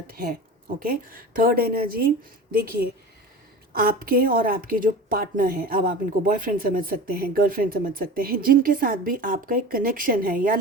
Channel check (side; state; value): both; normal; correlation 0.34